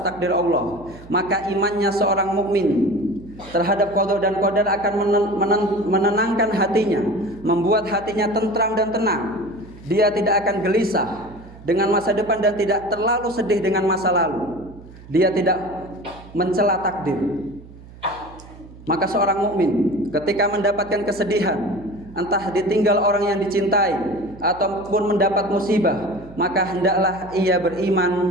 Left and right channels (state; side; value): noise; right; hum, 19 dB below the sound